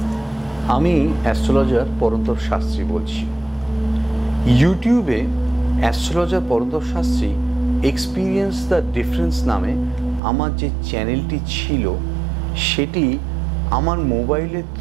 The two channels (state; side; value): drops out; left; at 10.2 s